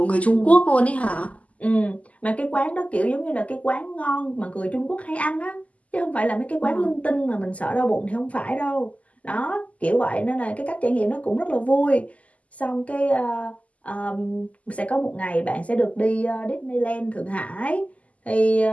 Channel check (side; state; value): right; late; 0.069 ms